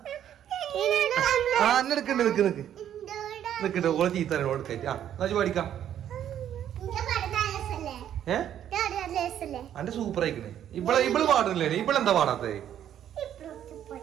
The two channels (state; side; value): quieter; left; 10.4 dB